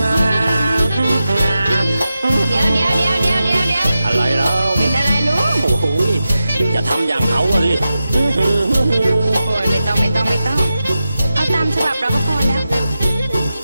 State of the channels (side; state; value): both; inverted; correlation -0.92